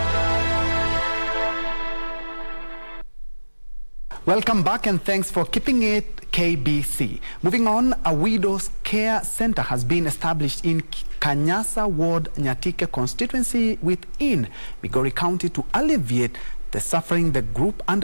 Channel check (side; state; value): both; inverted; correlation -1.00